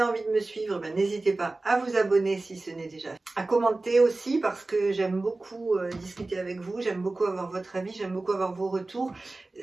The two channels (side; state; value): left; quieter; 3.2 dB